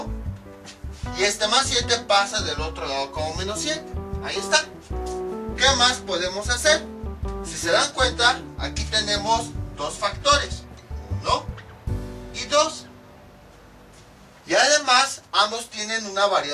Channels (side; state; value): both; identical; correlation 1.00